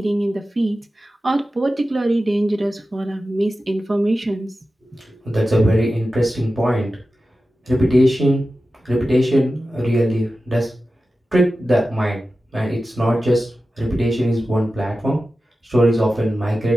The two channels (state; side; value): normal; both; correlation 0.93